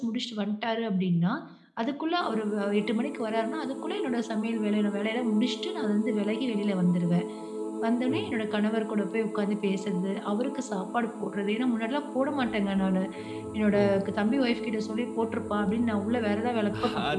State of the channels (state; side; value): identical; both; correlation 1.00